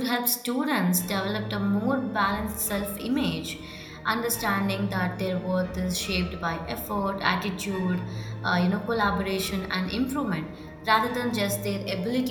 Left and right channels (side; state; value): both; identical; correlation 1.00